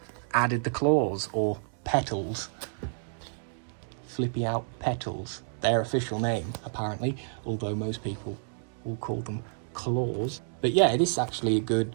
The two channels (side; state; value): left; silent; digital silence